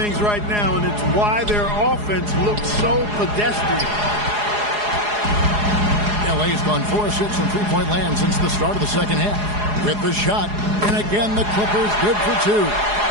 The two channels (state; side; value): late; left; 4.8 ms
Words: right now, and it's why their offense looks so pedestrian. LA's gone 4 of 6 from three-point land since the start of the second half. With the shot, and again the Clippers good for 2.